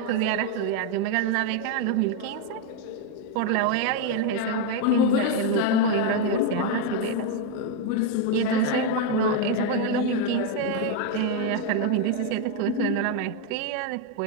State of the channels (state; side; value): different; both; correlation 0.01